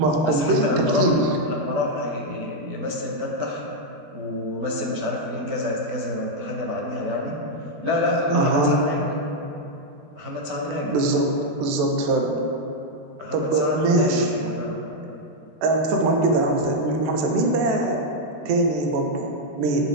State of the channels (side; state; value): left; late; 13 ms